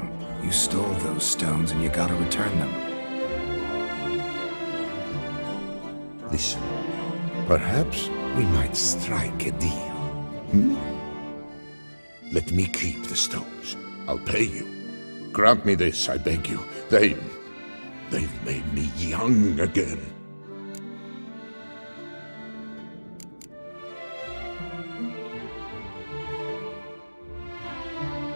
you stole those stones and you gotta return them. Listen, perhaps we might strike a deal. Hmm? Let me keep the stones. I'll pay you. Grant me this, I beg you. They've made me young again.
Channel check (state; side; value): inverted; both; correlation -1.00